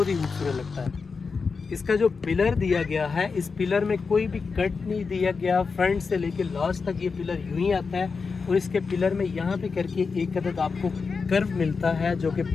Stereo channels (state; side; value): quieter; right; 4.9 dB